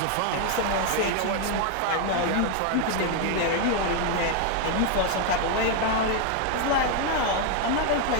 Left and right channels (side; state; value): both; different; correlation 0.00